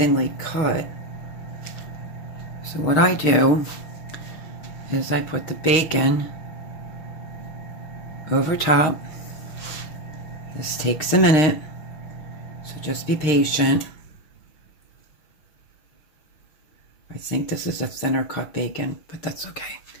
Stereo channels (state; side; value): late; right; 6.5 ms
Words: cut. So what I do is I put the bacon over top. This takes a minute, so just be patient. I think this is a thinner cut bacon, but that's okay.